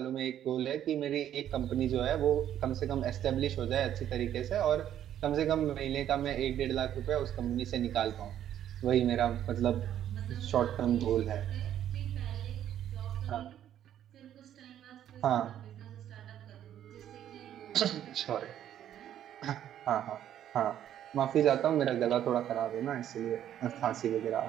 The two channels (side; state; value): left; quieter; 10.9 dB